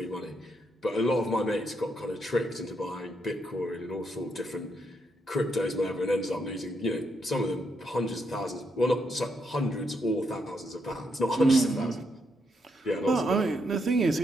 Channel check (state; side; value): normal; both; correlation 0.79